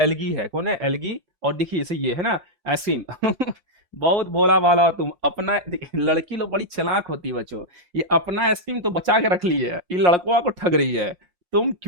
है। कौन है, एल्गी। और देखिए इसे ये है ना आइसक्रीम। बहुत भोला भाला तुम अपना, लड़की लोग बड़ी चालाक होती है बच्चों, ये अपना आइसक्रीम तो बचा के रख ली है, ये लड़कों को ठग रही है। तुम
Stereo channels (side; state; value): left; late; 5.7 ms